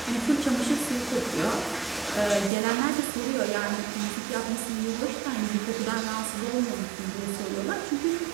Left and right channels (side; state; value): left; drops out; at 2.5 s